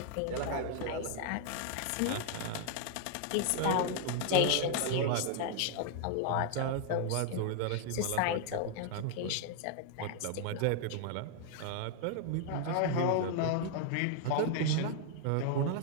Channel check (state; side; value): different; both; correlation 0.00